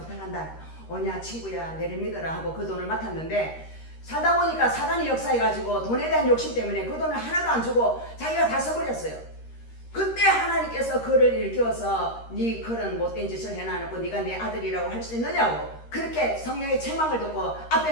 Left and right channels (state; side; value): late; right; 13 ms